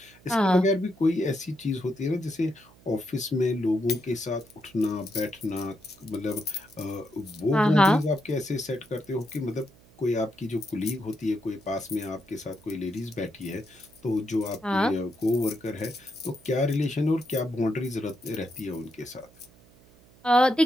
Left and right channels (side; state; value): right; noise; hum, 26 dB below the sound